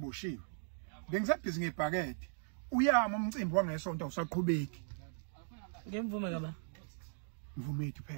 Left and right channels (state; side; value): silent; left; digital silence